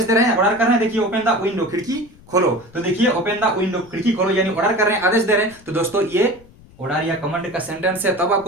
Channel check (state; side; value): noise; left; rumble, 25 dB below the sound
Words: दे रहे हैं, ऑर्डर कर रहे हैं। देखिए ओपन द विंडो, खिड़की खोलो। तो देखिए ओपन द विंडो, खिड़की खोलो, यानी ऑर्डर कर रहे हैं, आदेश दे रहे हैं। तो दोस्तों ये ऑर्डर या कमांड का सेंटेंस है। तब